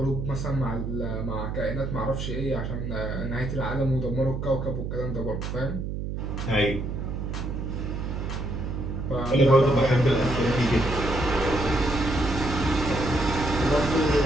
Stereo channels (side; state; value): right; noise; hum, 4 dB below the sound